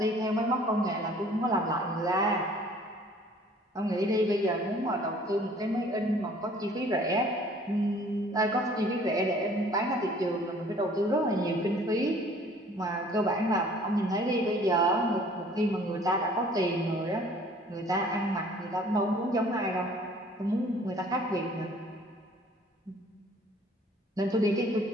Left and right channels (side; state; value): both; normal; correlation 0.54